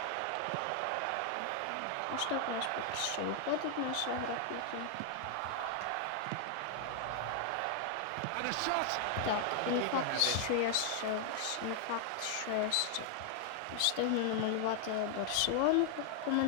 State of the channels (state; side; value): different; both; correlation 0.00